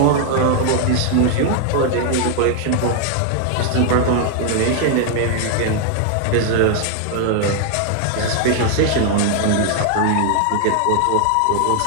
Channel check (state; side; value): different; both; correlation 0.00